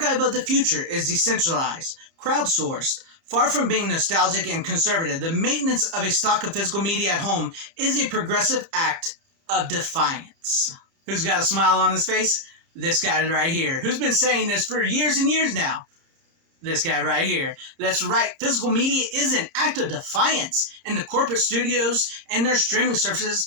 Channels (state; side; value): late; left; 30 ms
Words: of the future is decentralized, crowdsourced. Far from being nostalgic and conservative, the maintenance of a stock of physical media at home is a progressive act of defiance. Who's got a smile on his face? This guy right here. Who's been saying this for years and years now? This guy right here. That's right, physical media is an act of defiance, and the corporate studios and their streaming